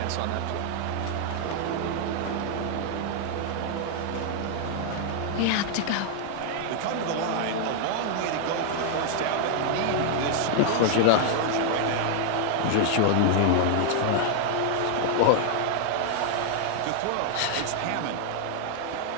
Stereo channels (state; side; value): different; both; correlation 0.00